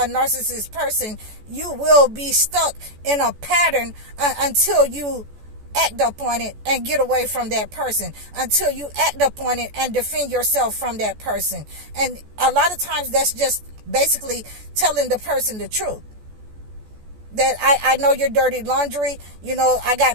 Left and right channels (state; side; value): late; left; 14 ms